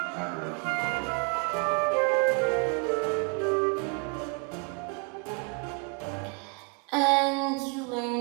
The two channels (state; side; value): quieter; left; 35.0 dB